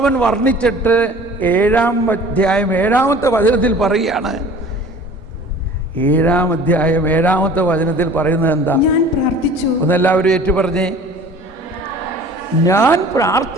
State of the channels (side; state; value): both; normal; correlation 0.46